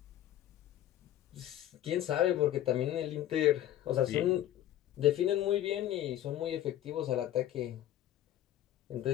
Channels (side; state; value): right; quieter; 12.7 dB